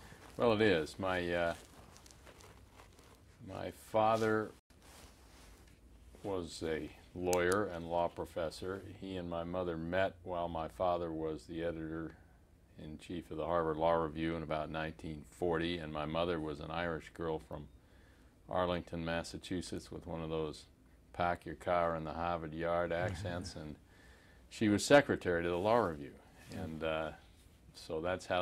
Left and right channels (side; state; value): both; identical; correlation 1.00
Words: Well, it is. My father was a lawyer and law professor. He and my mother met while my father was the editor-in-chief of the Harvard Law Review in about 1940, and my mother was an Irish girl from Arlington, Massachusetts, with one of those pack your car in the Harvard Yard accents, and she was secretary to the Law Review, and so that's